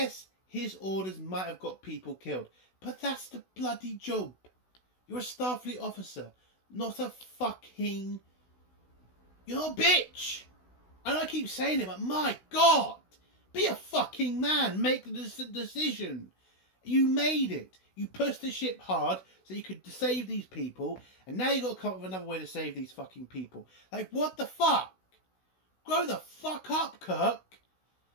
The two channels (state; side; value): late; right; 16 ms